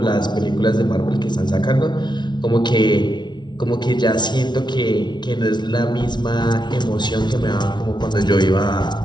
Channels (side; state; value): right; late; 0.21 ms